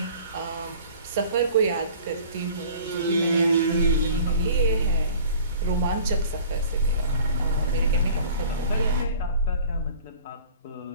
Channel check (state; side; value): inverted; both; correlation -0.46